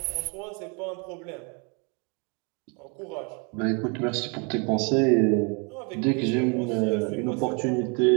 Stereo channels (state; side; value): quieter; left; 34.1 dB